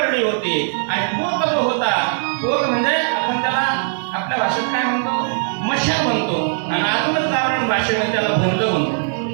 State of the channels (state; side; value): silent; left; digital silence